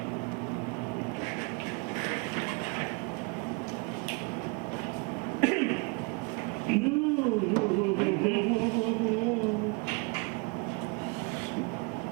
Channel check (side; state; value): left; quieter; 31.0 dB